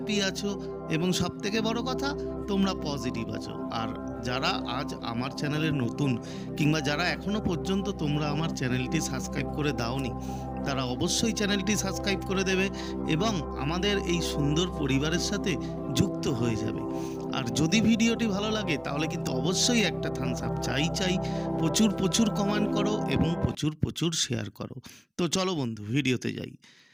আছো এবং সবথেকে বড় কথা তোমরা পজিটিভ আছো। আর যারা আজ আমার চ্যানেলে নতুন কিংবা যারা এখনও পর্যন্ত তোমরা আমার চ্যানেলটি সাবস্ক্রাইব করে দাওনি, তারা অবশ্যই চ্যানেলটি সাবস্ক্রাইব করে দেবে এবং আমাদের এই সুন্দর পরিবারের সাথে যুক্ত হয়ে যাবে। আর যদি ভিডিওটি ভালো লাগে তাহলে কিন্তু অবশ্যই একটা থামস আপ চাই। প্রচুর প্রচুর কমেন্ট করো এবং প্রচুর প্রচুর শেয়ার করো। তো চলো বন্ধু, ভিডিওতে যাই।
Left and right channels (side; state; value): both; identical; correlation 1.00